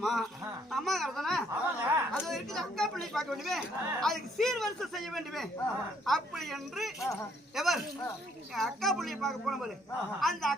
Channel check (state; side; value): normal; both; correlation 0.67